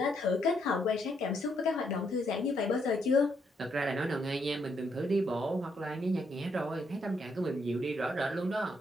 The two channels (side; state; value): both; normal; correlation 0.75